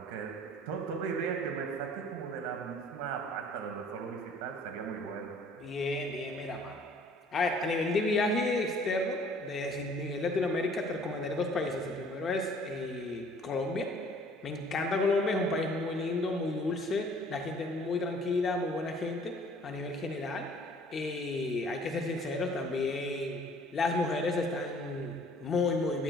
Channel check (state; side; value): normal; both; correlation 0.55